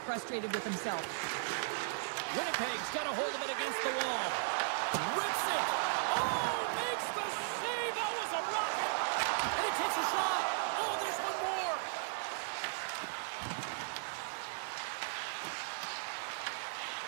frustrated with himself. Winnipeg's got a hold of it against the wall. Rips it. Oh, makes the save. That was a rocket. And he takes a shot. Oh, there's one more.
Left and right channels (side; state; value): left; silent; digital silence